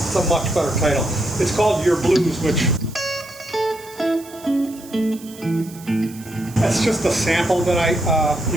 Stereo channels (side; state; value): right; noise; hiss, 20 dB below the sound